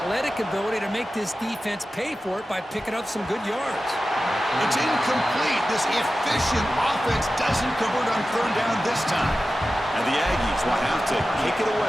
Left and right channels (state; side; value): normal; both; correlation 0.94